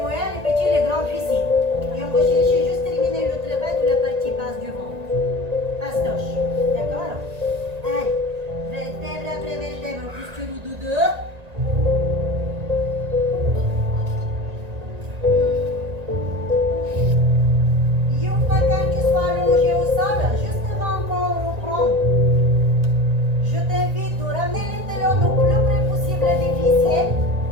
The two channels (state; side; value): late; left; 1.9 ms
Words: moyens, les petits, les grands fessiers. Et on va chercher juste terminer le travail de la partie basse du ventre. Pastoche. D'accord? Allez, vertèbre après vertèbre, posture de deux. Quand tu sois allongé au sol, juste avant qu'on reprend, je t'invite de ramener les talons le plus près possible des fessiers